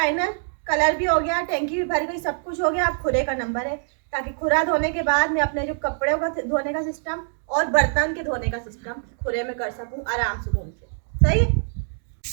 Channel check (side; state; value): left; silent; digital silence